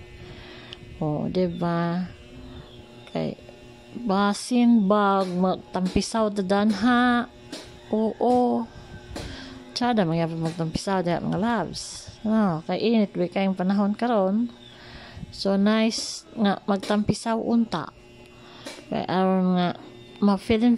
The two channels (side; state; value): both; identical; correlation 1.00